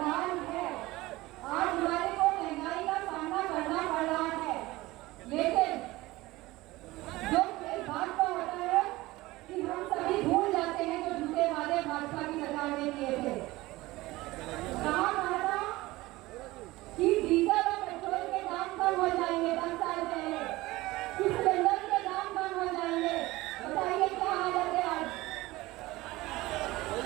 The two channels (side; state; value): left; quieter; 19.3 dB